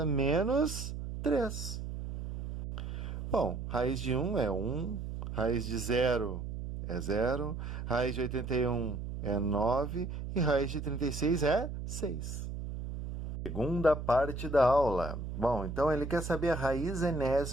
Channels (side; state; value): right; noise; hum, 6 dB below the sound